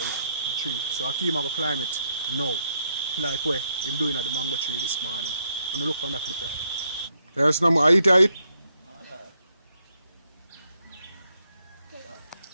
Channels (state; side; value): inverted; both; correlation -0.77